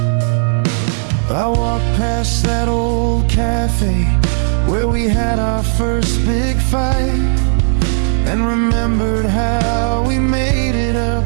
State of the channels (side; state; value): left; silent; digital silence